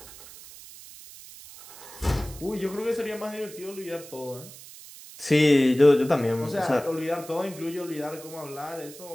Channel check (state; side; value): noise; right; hiss, 17 dB below the sound